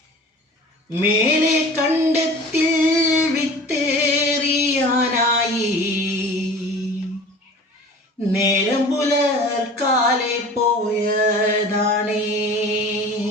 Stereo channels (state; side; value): normal; both; correlation 0.41